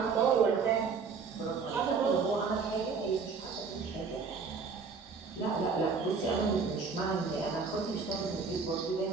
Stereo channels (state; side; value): quieter; left; 5.1 dB